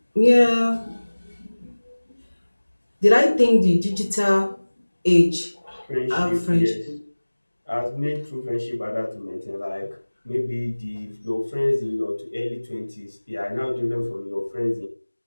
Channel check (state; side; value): inverted; both; correlation -1.00